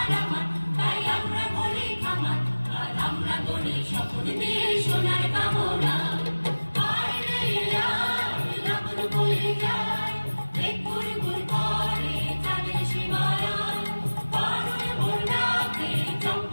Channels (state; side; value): inverted; both; correlation -1.00